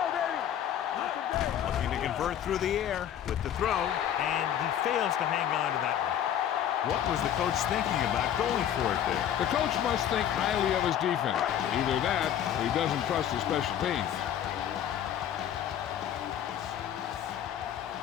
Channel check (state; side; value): quieter; right; 10.2 dB